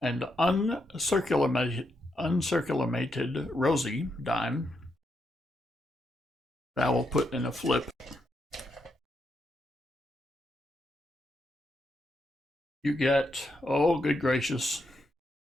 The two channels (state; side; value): normal; both; correlation 0.81